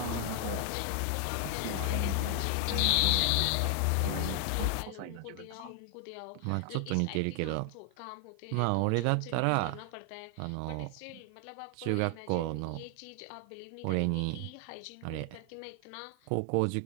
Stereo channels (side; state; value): both; different; correlation 0.00